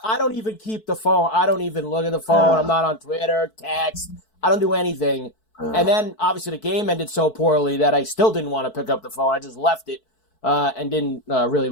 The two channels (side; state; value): right; late; 4.6 ms